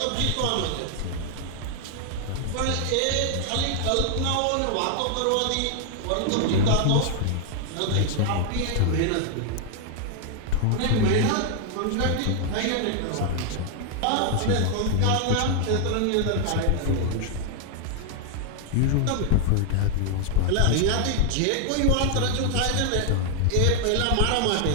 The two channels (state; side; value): different; both; correlation 0.00